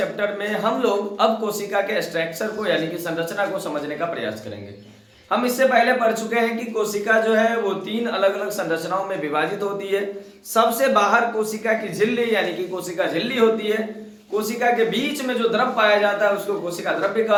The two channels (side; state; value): both; identical; correlation 1.00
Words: में हम लोग अब कोशिका के स्ट्रक्चर को यानी कि संरचना को समझने का प्रयास करेंगे। हम इससे पहले पढ़ चुके हैं कि कोशिका जो है वो 3 अलग अलग संरचनाओं में विभाजित होती है। सबसे बाहर कोशिका की झिल्ली यानी कि कोशिका झिल्ली होती है। कोशिका के बीच में जो द्रव पाया जाता है उसको कोशिका द्रव्य